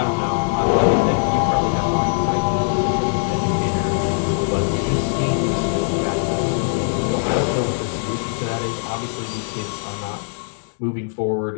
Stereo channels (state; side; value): silent; right; digital silence